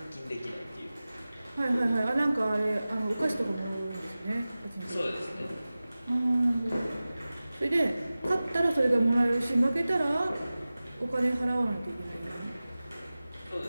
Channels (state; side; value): inverted; both; correlation -0.97